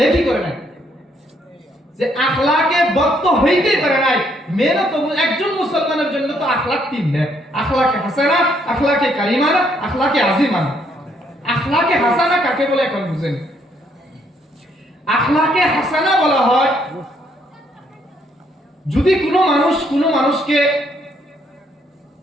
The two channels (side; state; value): both; normal; correlation 0.70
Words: করে নাই, যে আখলাকে বদ তো হইতেই পারে নাই। মেহনত একজন মুসলমানের জন্য তো আখলাক 3 নেই, আখলাকে হাসানা, আখলাকে কারিমানা, আখলাকে আজিমানা। আখলাকে হাসানা কাকে বলে এখন বুঝেন। আখলাকে হাসানা বলা হয় যদি কোনো মানুষকে